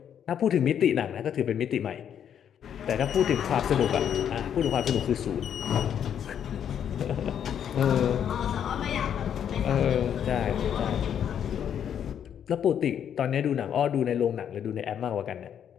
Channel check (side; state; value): right; quieter; 8.9 dB